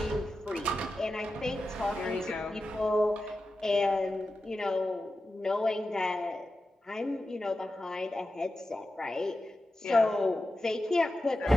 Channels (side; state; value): both; normal; correlation 0.92